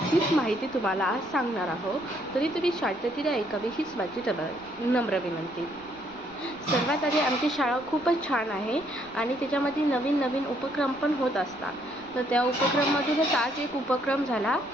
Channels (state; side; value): noise; right; rumble, 25 dB below the sound